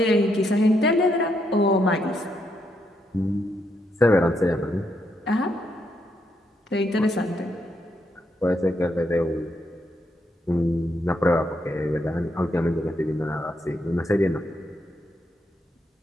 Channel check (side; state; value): both; normal; correlation 0.78